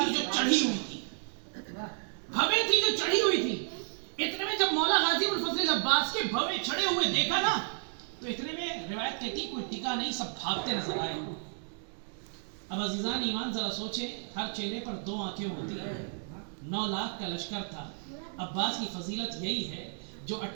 जो चढ़ी हुई थी, भवें थी जो चढ़ी हुई थी। इतने में जब मौला गाजी अबुल फजल अब्बास के भवें चढ़े हुए देखा ना, तो इतने में रिवायत कहती कोई टिका नहीं, सब भागते नजर आए। अब अजीजान ईमान जरा सोचे, हर चेहरे पर 2 आंखें होती हैं। 9 लाख का लश्कर था। अब्बास की फजीलत यही है, जो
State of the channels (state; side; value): silent; left; 56 dB below the other